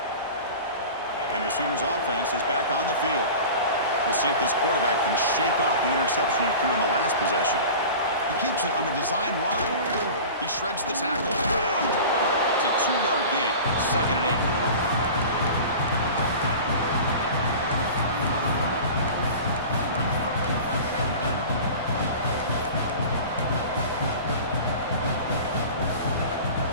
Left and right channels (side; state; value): both; inverted; correlation -0.36